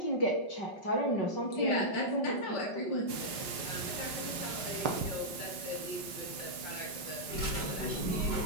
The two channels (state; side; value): late; right; 4.8 ms